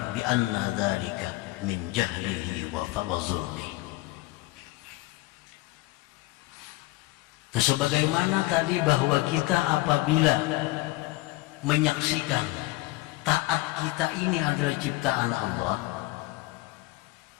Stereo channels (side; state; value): right; quieter; 19.8 dB